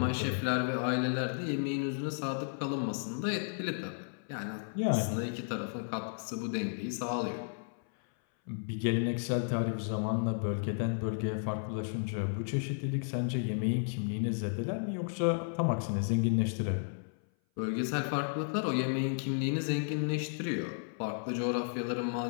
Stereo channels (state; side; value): silent; right; 56 dB below the other